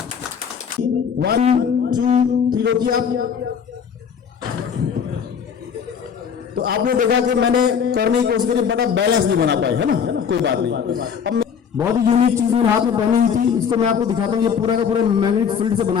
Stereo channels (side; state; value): right; quieter; 7.1 dB